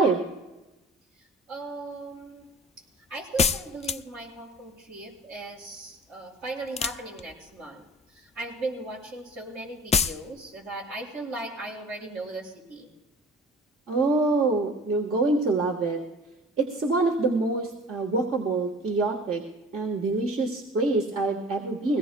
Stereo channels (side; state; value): both; normal; correlation 0.44